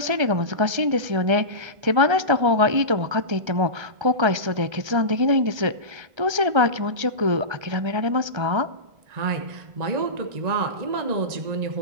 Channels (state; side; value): late; left; 1.3 ms